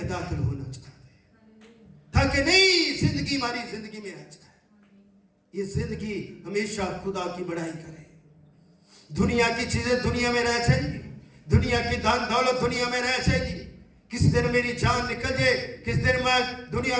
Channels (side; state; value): both; identical; correlation 1.00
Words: दाखिल होना चाहते हैं, ताकि नई जिंदगी हमारी जिंदगी में आ जाए। ये जिंदगी हमेशा खुदा की बड़ाई करे। दुनिया की चीजें दुनिया में रह जाएगी, दुनिया की धन दौलत दुनिया में रह जाएगी। किस दिन मेरी जान निकल जाए, किस दिन मैं दुनिया